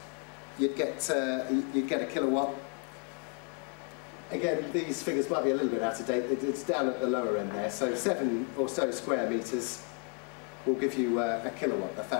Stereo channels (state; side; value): quieter; right; 34.9 dB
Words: you'd get a kilowatt. Again, these figures might be a little bit out of date. It's down at the lower end there. So 7 or so square meters will give you a kilowatt,